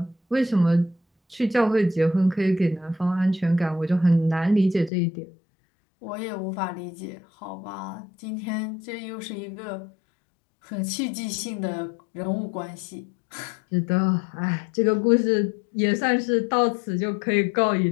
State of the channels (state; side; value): drops out; right; at 4.9 s